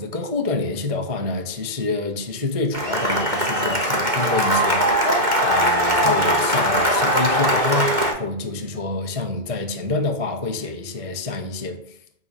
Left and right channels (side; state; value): left; late; 2.1 ms